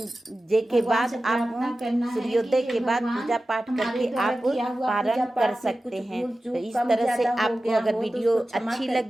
के बाद आप सूर्योदय के बाद पूजा पाठ करके आप पारण कर सकते हैं। तो इस तरह से आपको अगर वीडियो अच्छी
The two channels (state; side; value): normal; both; correlation 0.95